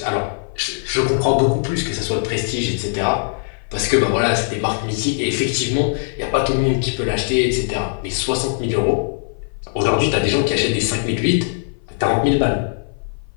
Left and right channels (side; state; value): right; silent; 56 dB below the other